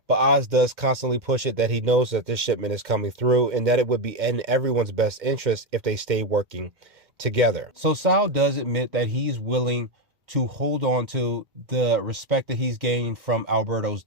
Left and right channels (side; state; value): left; late; 2.1 ms